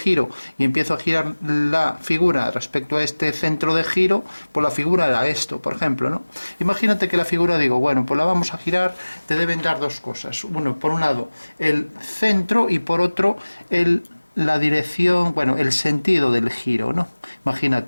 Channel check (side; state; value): both; inverted; correlation -1.00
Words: y empiezo a girar la figura respecto a este centro de giro, pues la figura era esto, por ejemplo, ¿no? Imagínate que la figura, digo, bueno, pues la vamos a girar, te deben dar dos cosas. Uno, por un lado, el centro y por otro, la dirección, bueno, el sentido del giro, ¿no?